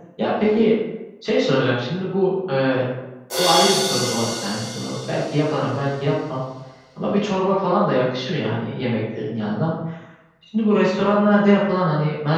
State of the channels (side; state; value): both; identical; correlation 1.00